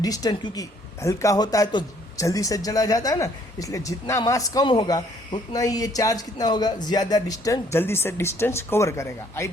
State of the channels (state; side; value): normal; both; correlation 0.63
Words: क्योंकि हल्का होता है तो जल्दी से चला जाता है ना, इसलिए जितना मास कम होगा उतना ही ये चार्ज कितना होगा, ज़्यादा डिस्टेंस, जल्दी से डिस्टेंस कवर करेगा। आई